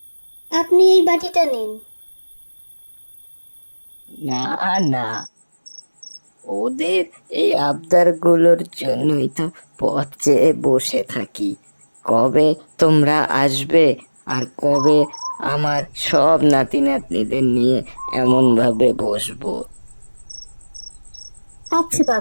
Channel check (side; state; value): both; inverted; correlation -1.00